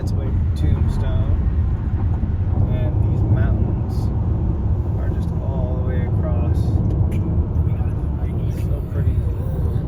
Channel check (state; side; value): identical; both; correlation 1.00